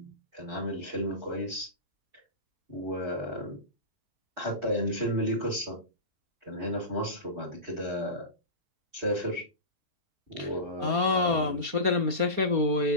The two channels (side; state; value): left; late; 4.3 ms